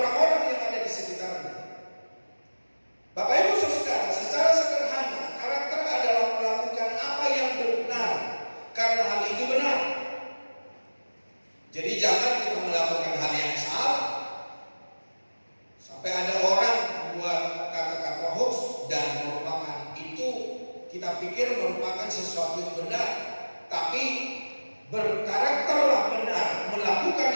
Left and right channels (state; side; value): inverted; both; correlation -1.00